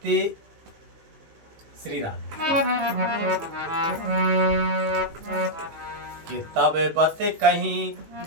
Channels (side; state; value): left; late; 19 ms